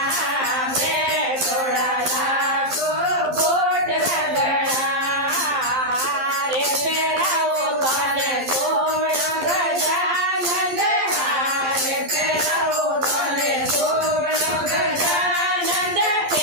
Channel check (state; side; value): late; left; 11 ms